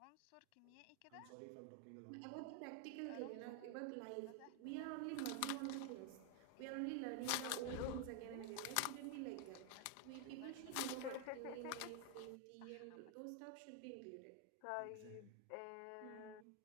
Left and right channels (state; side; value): different; both; correlation 0.01